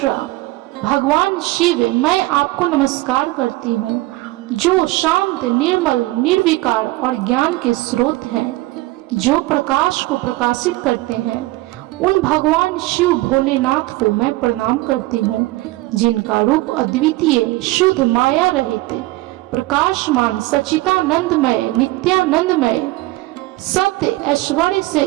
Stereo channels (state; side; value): quieter; left; 19.8 dB